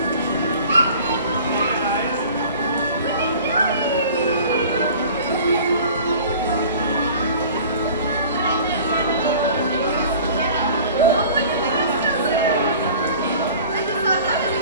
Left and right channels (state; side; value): inverted; both; correlation -0.45